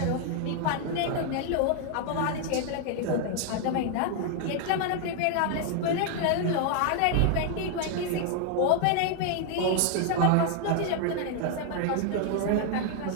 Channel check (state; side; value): different; both; correlation 0.00